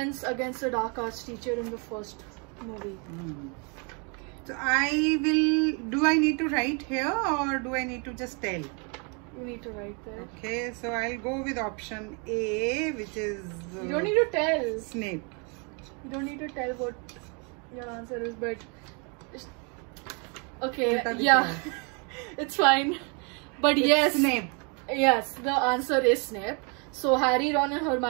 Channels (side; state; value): left; quieter; 35.0 dB